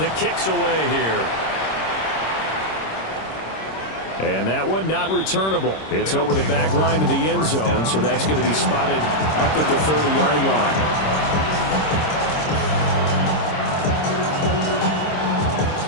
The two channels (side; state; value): right; late; 26 ms